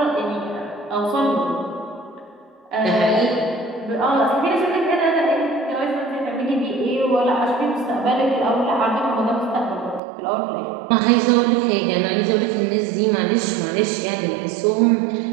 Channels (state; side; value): drops out; left; at 10.0 s